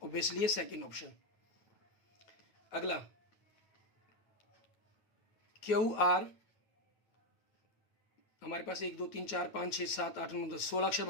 ऑब्वियसली है सेकेंड ऑप्शन। अगला QR, हमारे पास 1 2 3 4 5 6 7 8 9 10 16 अक्षर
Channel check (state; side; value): late; right; 9.1 ms